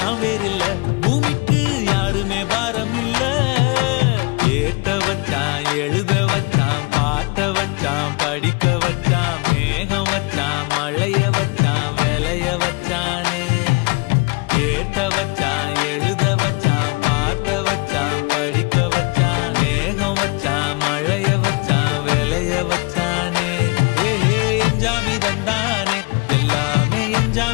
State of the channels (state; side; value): quieter; right; 29.3 dB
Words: வேறு இல்ல பூமிக்கு யாருமே பாரம் இல்ல ஏத்த வச்சான் எழுத வச்சான் பாட்ட வச்சான் படிக்க வச்சான் மேகம் வச்சான் மழைய வச்சான் விளைய வச்சானே ஏத்த வச்சான் எழுத வச்சான் பாட்ட வச்சான் படிக்க வச்சான் மேகம் வச்சான் மழைய வச்சான் விளைய வச்சானே ஏஹே எஞ்சாமி தந்தானே எல்லாமே